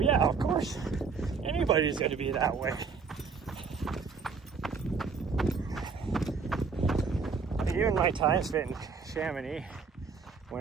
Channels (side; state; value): left; quieter; 5.2 dB